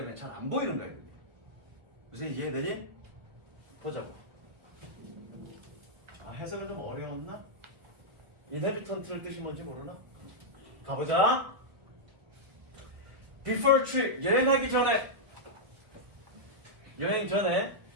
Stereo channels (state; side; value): late; left; 1.6 ms